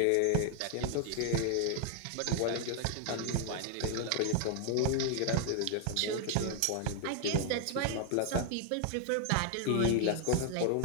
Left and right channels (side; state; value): both; different; correlation 0.00